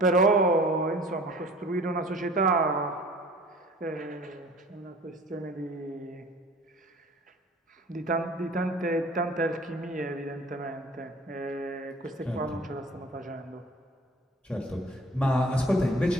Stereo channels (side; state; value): both; normal; correlation 0.47